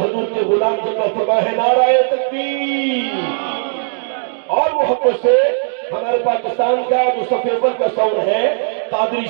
حضور کے غلام جب فرما ہے نعرہ تکبیر، اور محبت سے ہمارے پاکستان کا جو صف اول کا ساؤنڈ ہے قادری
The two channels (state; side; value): silent; left; digital silence